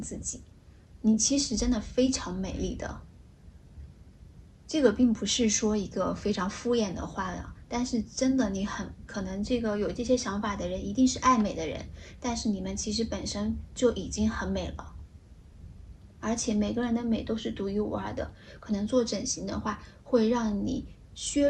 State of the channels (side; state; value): both; identical; correlation 1.00